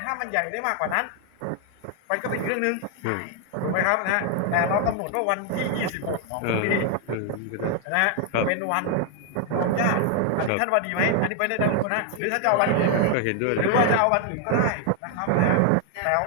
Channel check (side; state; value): both; different; correlation 0.00